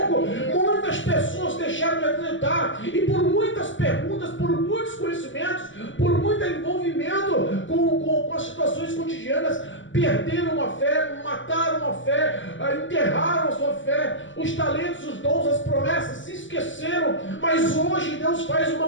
Muitas pessoas deixaram de acreditar, e por muitas perguntas, por muitos conhecimentos, por muito envolvimento com as situações cotidianas, perderam a fé, mataram a fé, enterraram a sua fé, os talentos, os dons, as promessas, se esqueceram. Mas hoje Deus faz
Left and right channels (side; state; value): right; late; 0.56 ms